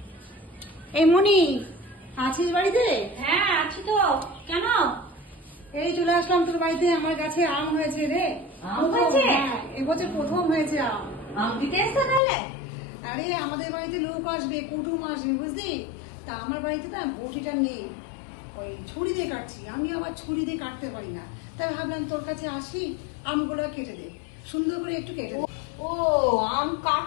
এই মনি, আছিস বাড়িতে? হ্যাঁ আছি তো। কেন? এই চলে আসলাম তোর বাড়িতে। আমার গাছে আম হয়েছে রে। আম হয়েছে? এবছর প্রথম হয়েছে আম। আম দিতে এসছো তাহলে? আরে আমাদের বাড়িতে লোক আসবে, কুটুম আসবে, বুঝলি? তা আমার বাড়িতে না বটিটা নেই, ওই ছুরি দিয়ে কাটছি। আমি আবার ছুরি দিয়ে কাটতে পারি না, তাই ভাবলাম তোর কাছে আসি, আমগুলো কেটে দে, সুন্দর করে একটু কেটে দে। ও, আম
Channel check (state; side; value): drops out; right; at 12.2 s